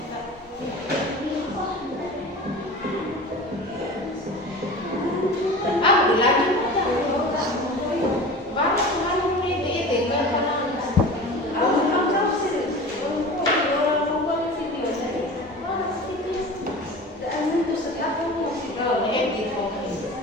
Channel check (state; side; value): normal; both; correlation 0.35